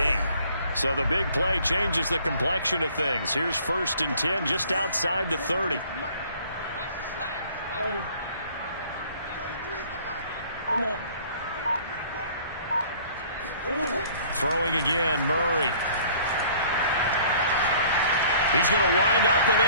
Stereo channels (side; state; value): both; inverted; correlation -0.54